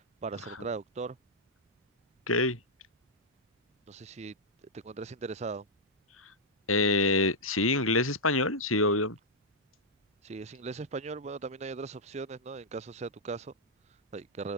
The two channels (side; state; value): both; normal; correlation -0.06